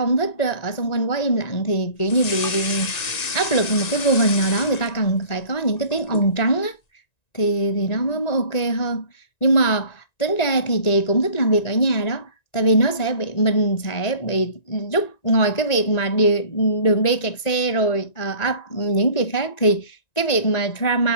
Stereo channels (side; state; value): right; late; 1.9 ms